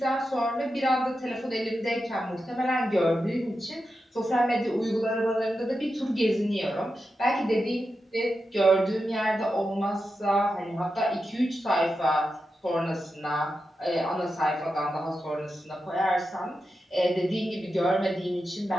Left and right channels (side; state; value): both; normal; correlation 0.89